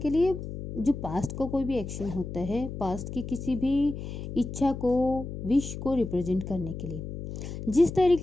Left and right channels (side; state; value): left; noise; hum, 8 dB below the sound